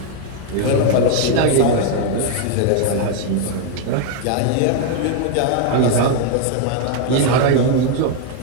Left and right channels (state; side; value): different; both; correlation 0.01